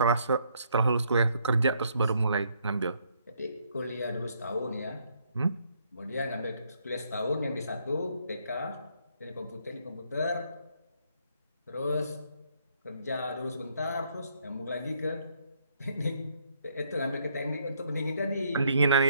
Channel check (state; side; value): inverted; both; correlation -0.70